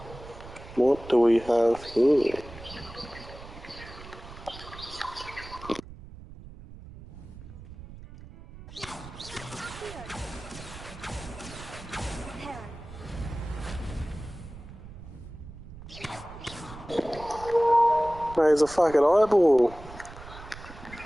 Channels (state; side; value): noise; right; rumble, 15 dB below the sound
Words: What do we have here? There's a fucking eyeball.